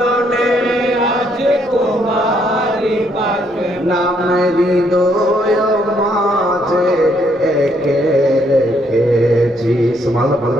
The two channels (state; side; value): normal; both; correlation 0.71